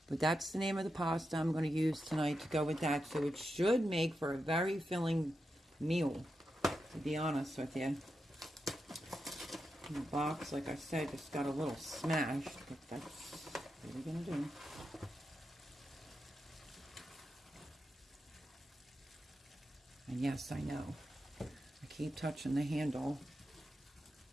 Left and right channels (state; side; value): normal; both; correlation 0.87